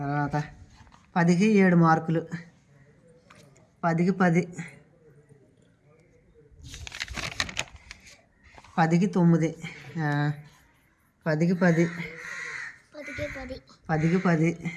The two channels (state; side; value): identical; both; correlation 1.00